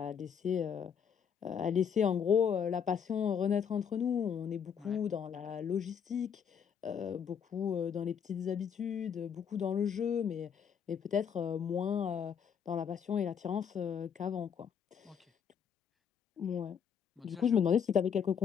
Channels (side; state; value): right; quieter; 7.5 dB